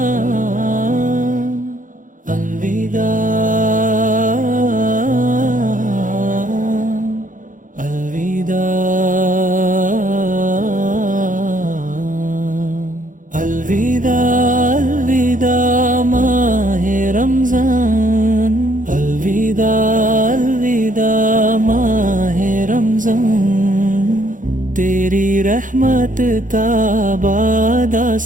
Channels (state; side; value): late; left; 0.38 ms